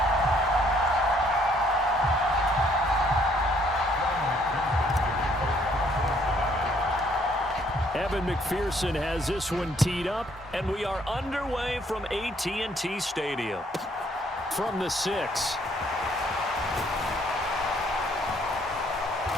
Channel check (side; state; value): both; normal; correlation 0.65